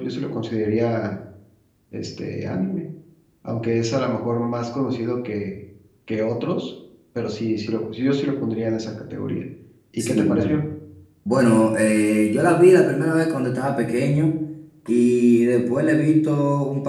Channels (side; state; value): both; identical; correlation 1.00